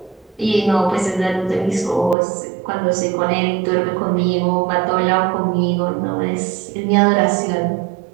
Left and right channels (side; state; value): left; drops out; at 2.1 s